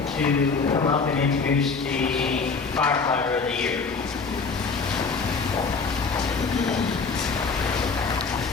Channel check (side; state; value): right; quieter; 4.7 dB